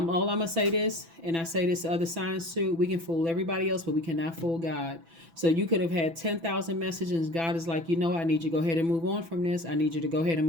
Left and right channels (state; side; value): late; left; 6.0 ms